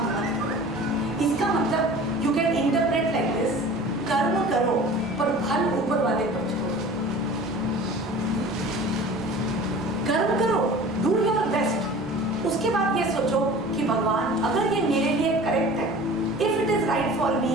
मत करो. इसका मतलब you can interpret like this. कर्म करो पर फल ऊपर वाले पर छोड़ो. कर्म करो, do your best. उसके बाद ये सोचो कि भगवान अगर ये मेरे लिए करेक्ट है, if it is right for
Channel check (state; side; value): normal; both; correlation 0.41